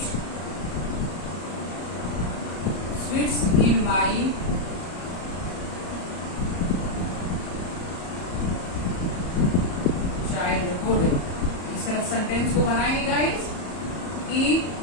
sweets in my childhood. इस तरह सेंटेंस को बनाएंगे गाइस कि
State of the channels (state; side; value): late; right; 34 ms